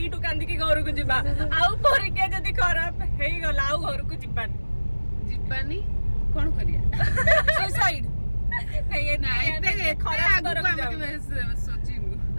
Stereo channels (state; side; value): inverted; both; correlation -1.00